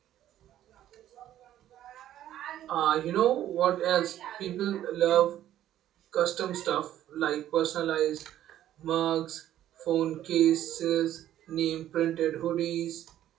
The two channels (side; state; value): left; quieter; 12.2 dB